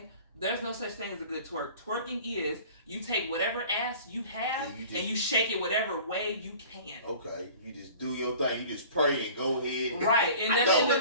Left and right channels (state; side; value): inverted; both; correlation -0.45